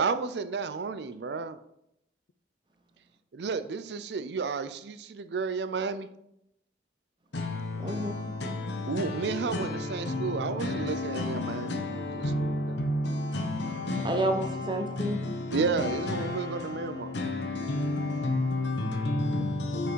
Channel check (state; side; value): normal; both; correlation 0.40